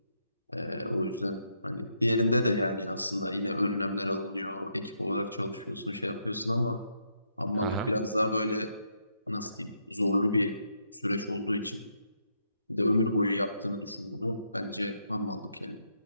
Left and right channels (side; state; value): both; inverted; correlation -0.77